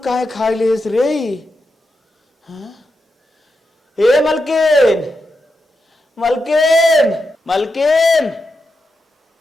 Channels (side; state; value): both; normal; correlation 0.87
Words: काहे खाई लेस रे हाँ ए मलकिन मलकिन मलकिन